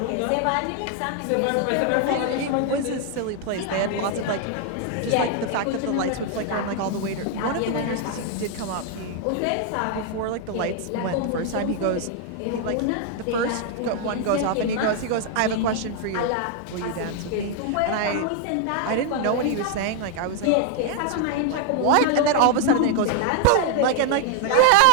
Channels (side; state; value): both; different; correlation 0.00